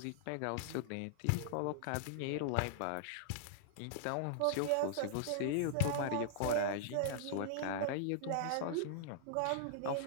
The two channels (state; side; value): different; both; correlation -0.01